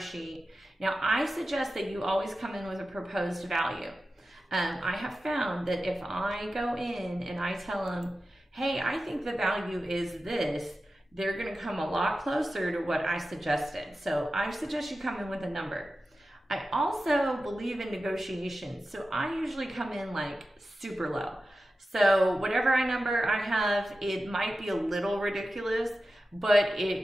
Now, I suggest that you always come in with a proposed value. I have found that if I go in and I tell them, hey, I think the value is this, they're going to come a lot closer to what I suggested. So I suggest you come in with a number. I also believe in negotiations. So I usually come in like super low. So whatever number I have, it might be a little ridiculous, but it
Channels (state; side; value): normal; both; correlation 0.93